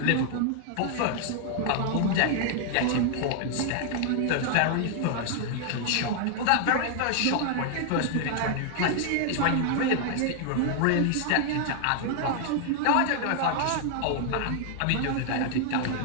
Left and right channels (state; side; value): different; both; correlation 0.00